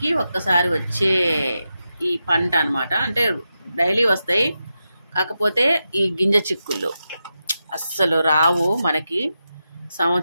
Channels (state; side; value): inverted; both; correlation -0.89